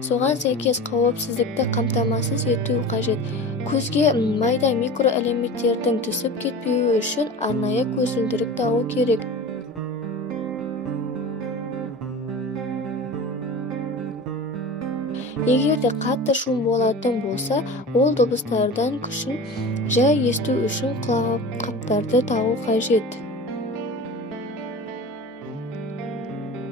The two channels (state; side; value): normal; both; correlation 0.34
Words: Соған сәйкес қауіпсіздікті қамтамасыз ету қажет. Көзге майда микроэлементтердің түсіп кетпеуі үшін арнайы көзілдірік тағу керек. Егерде қатты шум болатын болса, ол дыбыстардан күшін жай есту үшін құлаққаптарды тағу қажет.